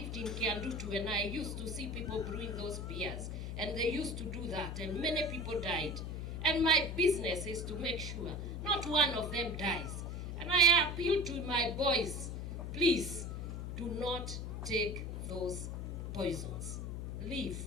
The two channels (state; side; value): noise; left; hum, 5 dB below the sound